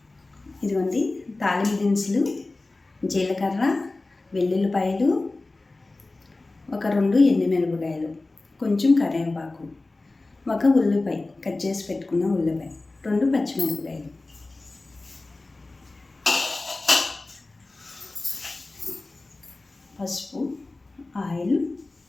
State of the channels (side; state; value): right; quieter; 3.2 dB